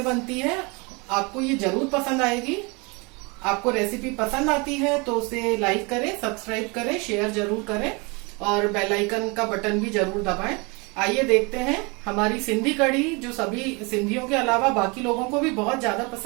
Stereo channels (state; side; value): quieter; left; 29.0 dB